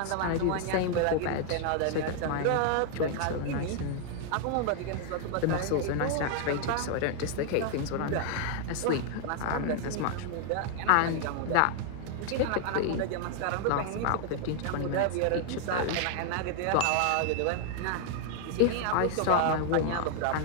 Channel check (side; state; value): both; different; correlation 0.00